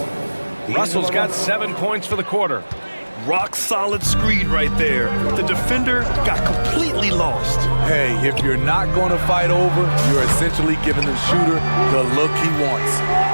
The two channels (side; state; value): both; inverted; correlation -1.00